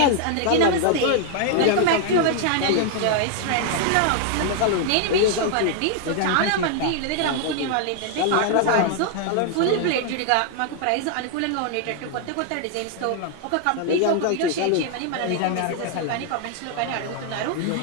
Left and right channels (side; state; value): both; different; correlation 0.00